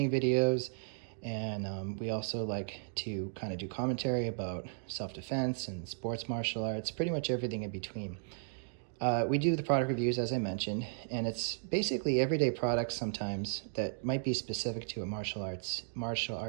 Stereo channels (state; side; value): silent; left; digital silence